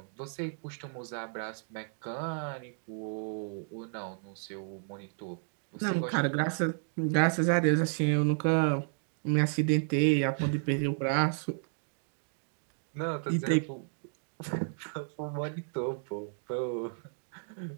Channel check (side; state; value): left; silent; digital silence